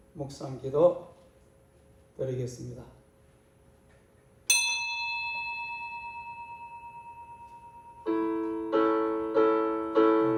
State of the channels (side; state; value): both; identical; correlation 1.00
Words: 묵상 기도 드리겠습니다.